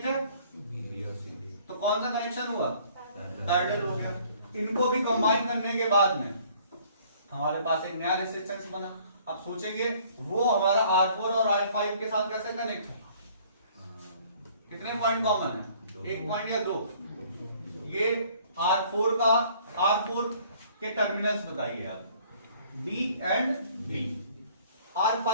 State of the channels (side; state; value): both; inverted; correlation -0.57